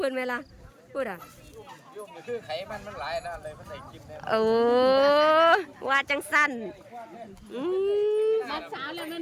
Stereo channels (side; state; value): both; identical; correlation 1.00